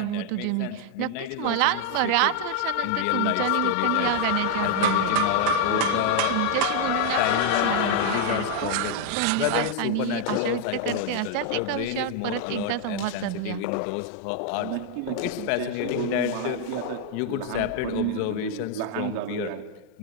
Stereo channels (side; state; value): both; different; correlation 0.00